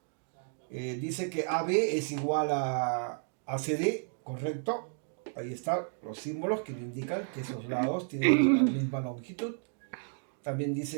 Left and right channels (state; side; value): silent; left; 56 dB below the other